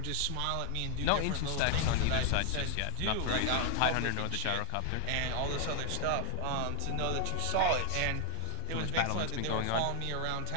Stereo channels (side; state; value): both; different; correlation 0.00